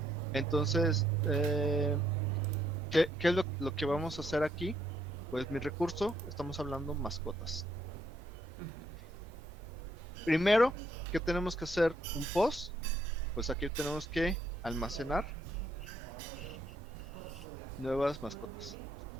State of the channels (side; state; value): both; normal; correlation 0.72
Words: Entonces, ¿Qué es lo que vamos a hacer aquí? Pues mi recurso, estamos hablando mascotas. Primero, ¿qué tenemos que hacer? Un post. Pues aquí tenemos que almacenar nuevas mascotas,